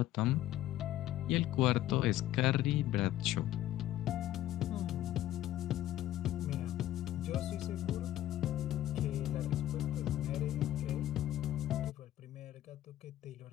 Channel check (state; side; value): quieter; right; 13.6 dB